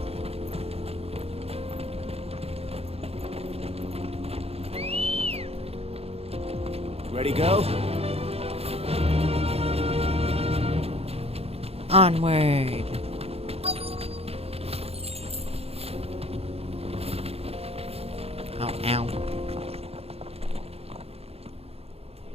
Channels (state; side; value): late; left; 0.29 ms